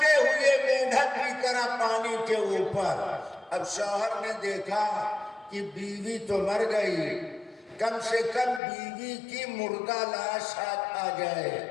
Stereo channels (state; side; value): drops out; right; at 8.6 s